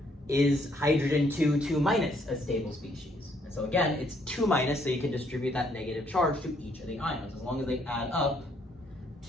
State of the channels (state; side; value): normal; both; correlation 0.69